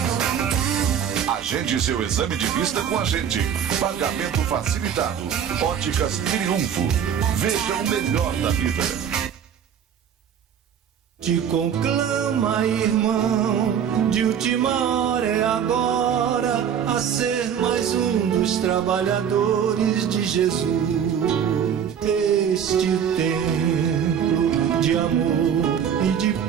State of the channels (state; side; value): quieter; left; 8.3 dB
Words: Agende seu exame de vista com a gente. Pagamento facilitado. Óticas Triunfo. Veja o melhor da vida. Te conclama, irmão, de última hora é agora, a ser mais um dos trabalhadores de Jesus. Este templo de amor e de